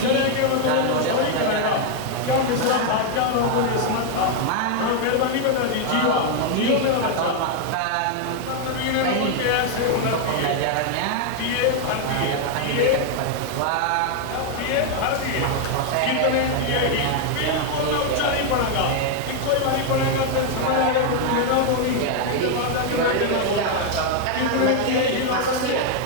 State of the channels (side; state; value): both; different; correlation 0.00